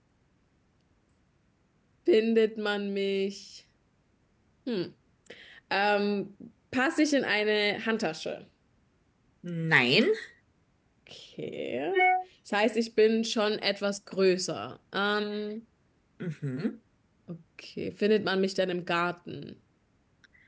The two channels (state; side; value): identical; both; correlation 1.00